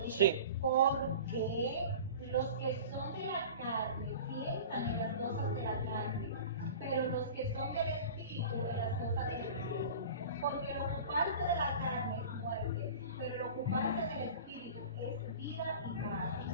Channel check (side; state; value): both; inverted; correlation -0.37